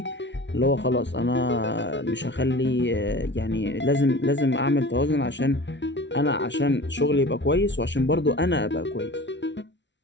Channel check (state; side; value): late; right; 0.52 ms